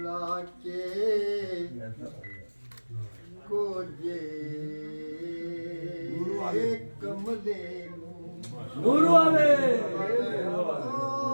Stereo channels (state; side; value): inverted; both; correlation -1.00